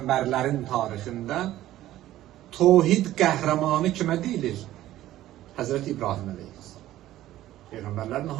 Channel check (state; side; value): quieter; left; 14.3 dB